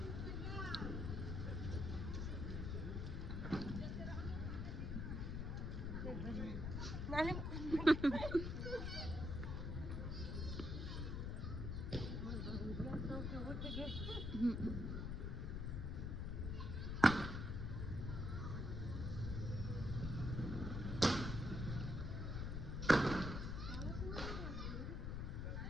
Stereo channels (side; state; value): left; noise; rumble, 2 dB below the sound